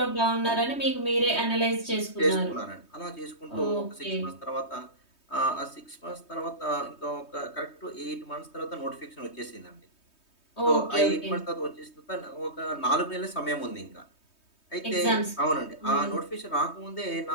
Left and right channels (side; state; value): right; late; 3.2 ms